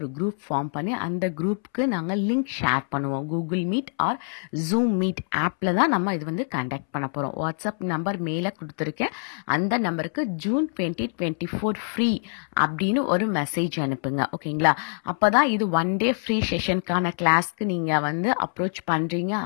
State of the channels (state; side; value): silent; right; 62 dB below the other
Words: குரூப் ஃபார்ம் பண்ணி அந்த குரூப்புக்கு நாங்கள் லிங்க் ஷேர் பண்ணுவோம். Google Meet or Zoom meet ஆப்பில் தான் நம்ம இது வந்து கண்டக்ட் பண்ண போகிறோம். வாட்ஸ்அப் நம்பர் மேலே கொடுத்துருக்கேன். அந்த நம்பருக்கு ஜூன் 2024 ஃப்ரீ அப்படின்னு ஒரு மெசேஜ் அனுப்புங்க. ஓகேங்களா, அப்போ தான் இது 1 டே ஃப்ரீ செஷனுக்கான கிளாஸ்க்கு நீங்கள் வந்து அப்ரோச் பண்ணுறீங்க